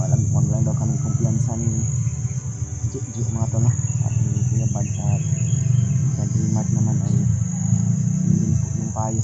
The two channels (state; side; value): identical; both; correlation 1.00